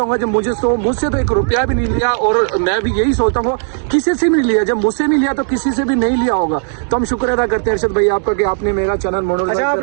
जब मुझसे तो एक रुपया भी नहीं लिया और मैं भी यही सोचता हूँ किसी से भी नहीं लिया, जब मुझसे नहीं लिया तो किसी से भी नहीं लिया होगा। तो हम शुक्र अदा करते हैं अर्शद भाई आपका कि आपने मेरा चैनल मोनेटाइज। अच्छा,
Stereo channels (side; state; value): left; silent; 70 dB below the other